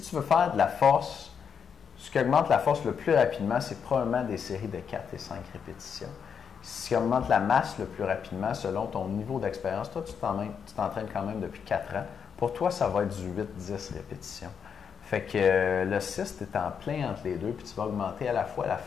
tu veux faire de la force, ce qui augmente la force le plus rapidement, c'est probablement des séries de 4 et 5 répétitions. Ce qui augmente la masse le plus rapidement, selon ton niveau d'expérience, toi, tu t'entraînes quand même depuis 4 ans. Pour toi, ça va être du 8-10 répétitions. Fait que le 6, tu es en plein entre les deux, puis tu vas augmenter à la fois la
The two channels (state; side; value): quieter; right; 7.0 dB